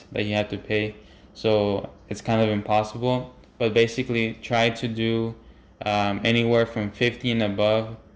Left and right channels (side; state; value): both; identical; correlation 1.00